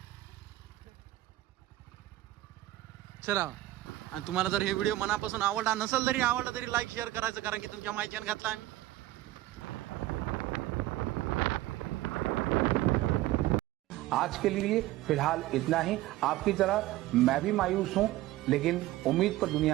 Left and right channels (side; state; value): left; quieter; 16.0 dB